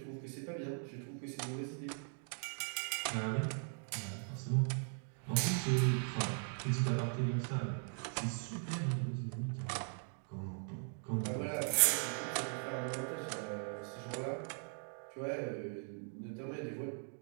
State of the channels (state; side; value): silent; left; 51 dB below the other